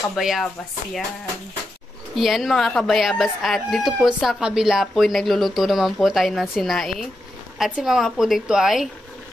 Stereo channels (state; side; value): normal; both; correlation 0.86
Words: kabayabas. Yan. Yan mga kabayabas. At dito po sa kabila po ay nagluluto naman po tayo ng sinaing. At si mama po dito ay